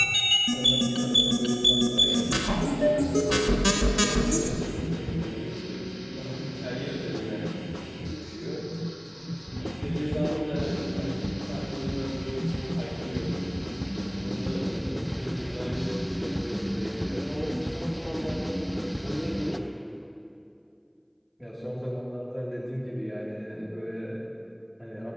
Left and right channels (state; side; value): identical; both; correlation 1.00